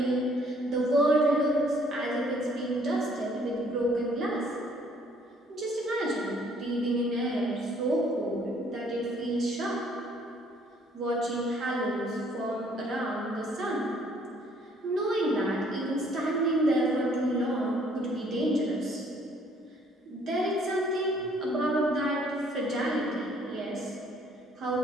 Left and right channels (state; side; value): normal; both; correlation 0.62